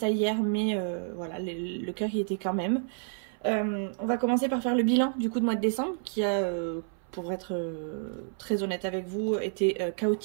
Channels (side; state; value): left; silent; 58 dB below the other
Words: hier mais voilà, le cœur y était quand même. On va commencer par faire le bilan du coup de mois de décembre qui a, pour être très honnête avec vous, été